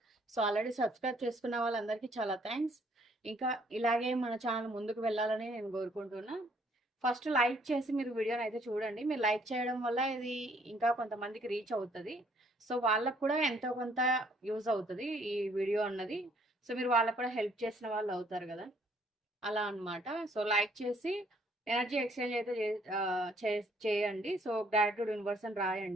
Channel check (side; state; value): both; normal; correlation 0.64